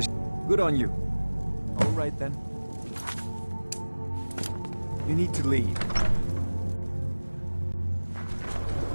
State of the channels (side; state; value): both; inverted; correlation -1.00